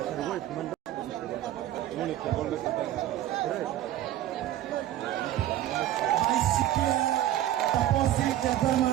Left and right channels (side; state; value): left; quieter; 13.1 dB